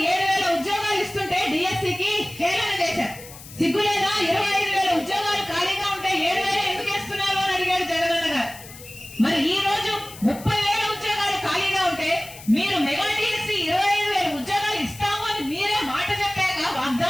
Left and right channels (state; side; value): noise; left; hiss, 17 dB below the sound